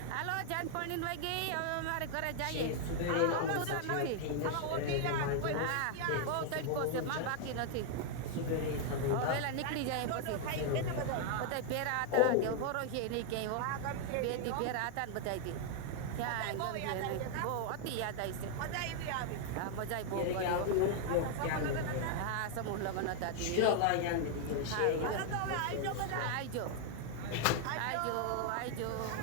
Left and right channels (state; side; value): different; both; correlation 0.00